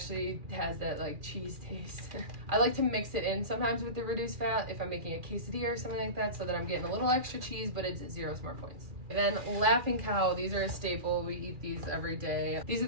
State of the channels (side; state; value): left; late; 2.4 ms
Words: has that like cheese taste. I like to mix it in sometimes with the reduced fat if I'm making a quesadilla or something like that, so that I'm getting a little extra cheese, but it's 0 smart points. And then Laughing Cow, these are a staple. We eat these every day. These are